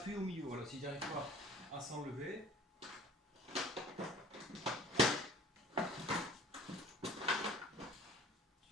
au milieu. Voilà, si tu n'arrives pas à s'enlever.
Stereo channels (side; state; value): both; normal; correlation 0.48